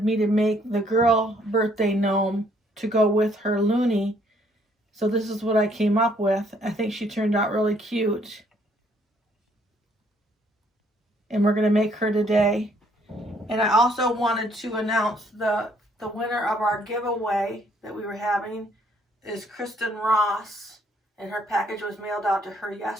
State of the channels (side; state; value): both; normal; correlation 0.65